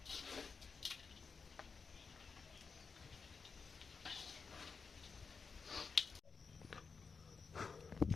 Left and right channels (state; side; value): quieter; right; 5.1 dB